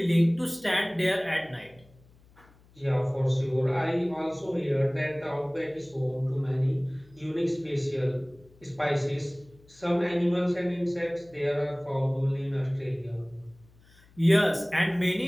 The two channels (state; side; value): noise; left; hum, 28 dB below the sound